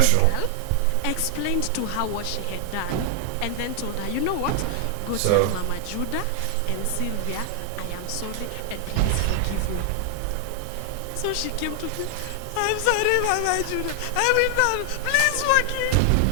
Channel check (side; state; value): both; different; correlation 0.00